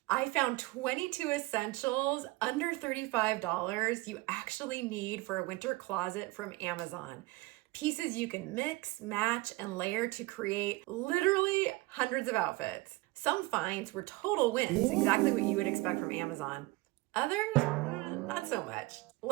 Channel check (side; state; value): left; quieter; 21.6 dB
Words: I found 22 essentials under $35 you actually need for a winter closet from Amazon. Pieces you can mix, match, and layer to create literally hundreds of outfits. Some finds were total wins, exactly what you would expect from Amazon. Others, not so much.